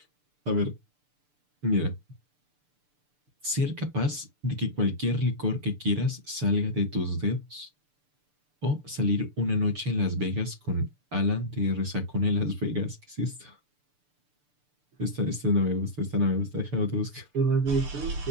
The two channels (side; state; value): left; late; 6.8 ms